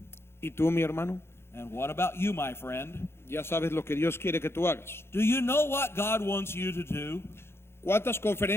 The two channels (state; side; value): late; right; 0.12 ms